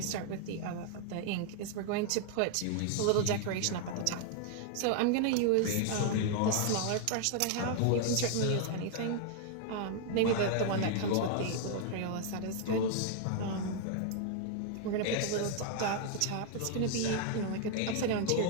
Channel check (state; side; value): different; both; correlation 0.00